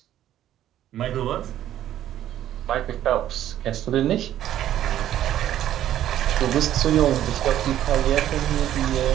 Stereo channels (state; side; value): quieter; left; 12.0 dB